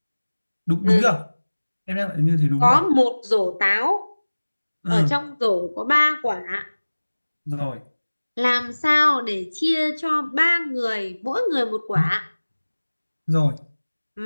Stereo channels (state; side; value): inverted; both; correlation -1.00